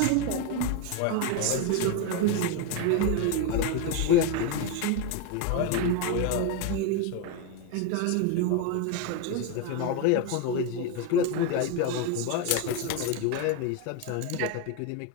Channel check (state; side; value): different; both; correlation 0.03